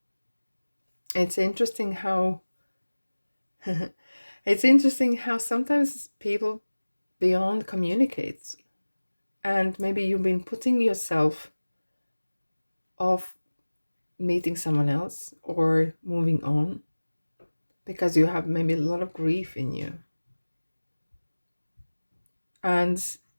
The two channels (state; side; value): inverted; both; correlation -1.00